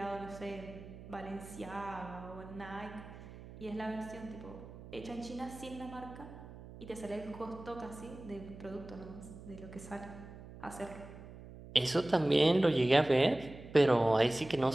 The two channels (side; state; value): right; noise; hum, 15 dB below the sound